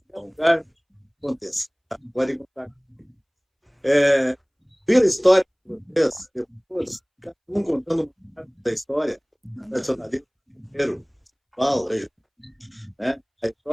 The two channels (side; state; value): both; identical; correlation 1.00